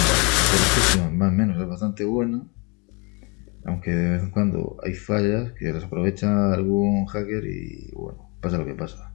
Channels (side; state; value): right; quieter; 31.0 dB